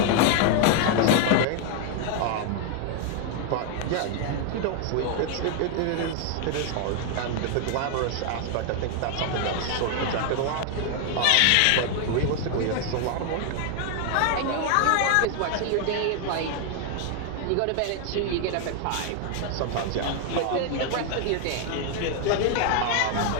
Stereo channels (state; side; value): different; both; correlation 0.00